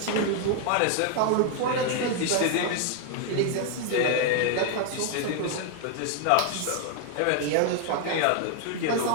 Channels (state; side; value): different; both; correlation 0.00